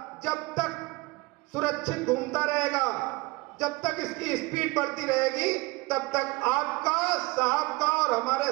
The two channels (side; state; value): left; quieter; 23.5 dB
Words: जब तक सुरक्षित घूमता रहेगा, जब तक इसकी स्पीड बढ़ती रहेगी, तब तक आपका, साहब का और हमारे